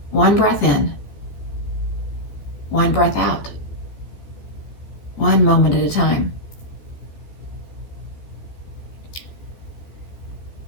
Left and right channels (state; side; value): late; right; 14 ms